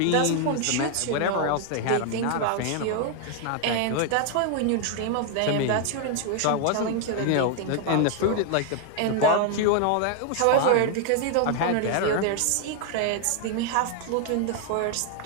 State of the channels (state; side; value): different; both; correlation 0.00